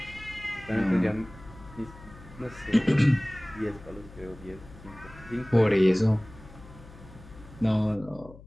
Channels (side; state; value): left; noise; hum, 19 dB below the sound